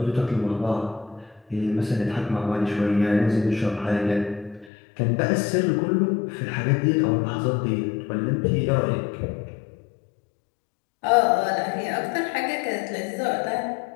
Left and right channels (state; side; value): drops out; right; at 4.7 s